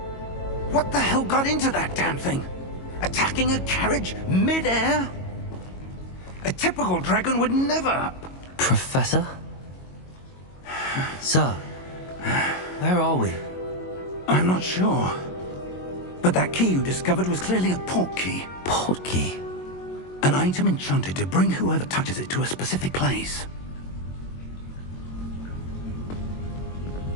What the hell got into that damn thing? Attacking a carriage mid-air? A typical dragon would never... Professor? Sir, where are we? I'm not sure. But that key you discovered was clearly a port key. Port key? An item enchanted to bring whoever touches it to a specific place.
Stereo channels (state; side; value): late; right; 22 ms